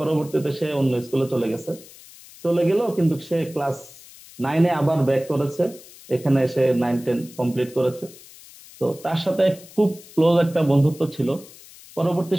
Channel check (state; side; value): noise; left; hiss, 20 dB below the sound